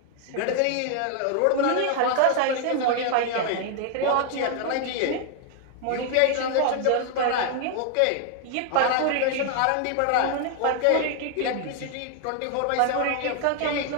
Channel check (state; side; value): different; both; correlation 0.00